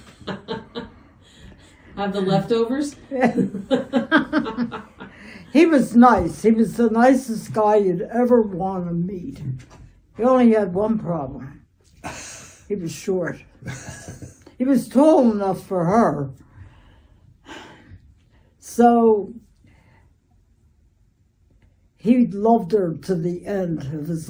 Have the leftovers? He was nice. He was the nicest guy you'd ever want to meet. He only had one problem. He was short. He was tall enough for her. So he loved her to the end of his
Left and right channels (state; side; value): identical; both; correlation 1.00